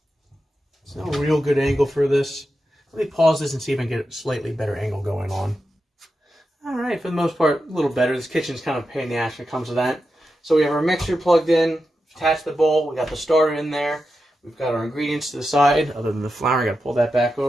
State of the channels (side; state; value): both; normal; correlation 0.89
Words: it's no real good angle for this. Let me pause this and see if I can get a slightly better angle going on. All right, for the most part, a little better. This kitchen's kind of a pain in the ass when it comes to that. So we have our mixer plugged in, attached the bowl, we got the starter in there. We've got our ingredients to the side, other than the flour. I got to pull that back